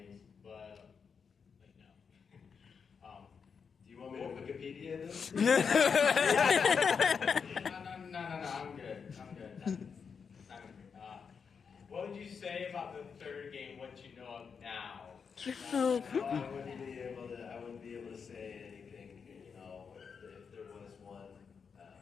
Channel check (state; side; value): quieter; right; 6.1 dB